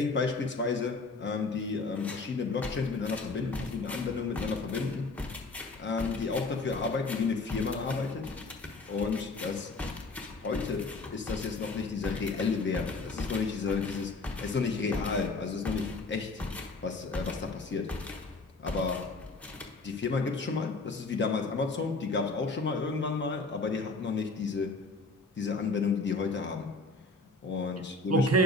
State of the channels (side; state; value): right; quieter; 3.4 dB